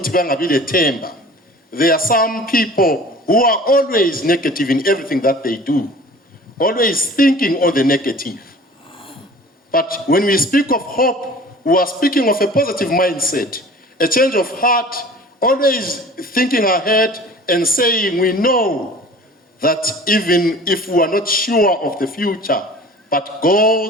bangabi lethemba. There are some people who are always negative in everything that they do, always thinking on the negative. But when we speak of hope, we are speaking of a positive mindset, a change of heart, always thinking ahead and saying we know that even if we are not sure of the future, but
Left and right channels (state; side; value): normal; both; correlation 0.44